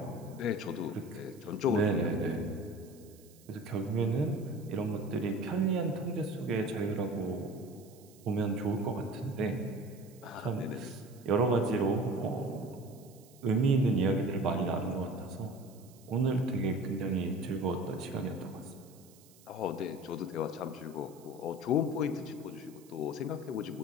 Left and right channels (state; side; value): noise; right; hiss, 25 dB below the sound